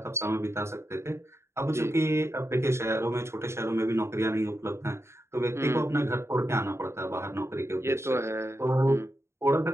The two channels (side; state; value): left; late; 0.13 ms